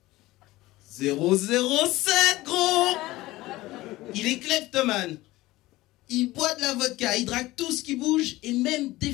007, gros! Il est kleptomane. Il boit de la vodka, il drague tout ce qui bouge, et même des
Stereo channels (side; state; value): right; quieter; 18.3 dB